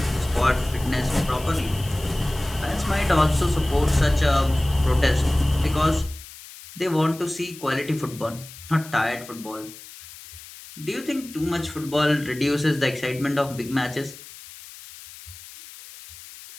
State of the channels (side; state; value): left; noise; hiss, 17 dB below the sound